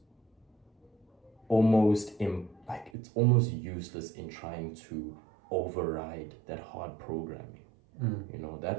almost it's almost useless in trying to override that hard programming.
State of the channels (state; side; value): drops out; left; at 2.9 s